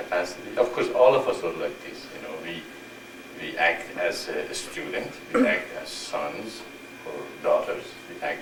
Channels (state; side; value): identical; both; correlation 1.00